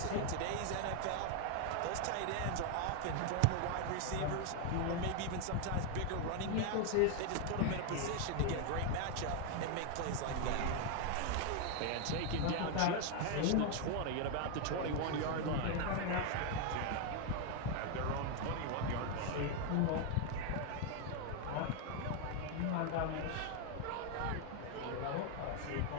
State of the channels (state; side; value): different; both; correlation 0.01